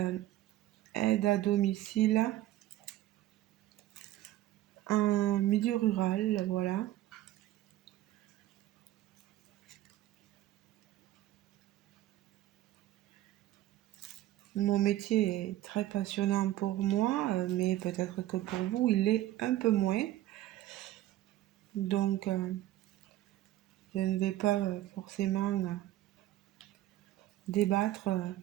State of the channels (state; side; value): quieter; left; 14.5 dB